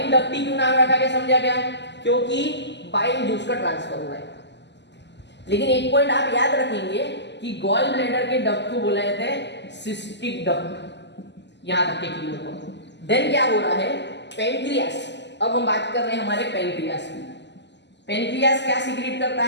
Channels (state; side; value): late; right; 0.51 ms